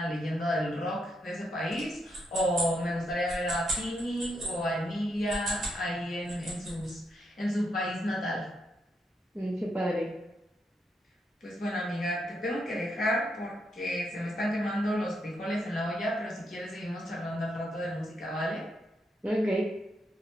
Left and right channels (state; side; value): normal; both; correlation 0.80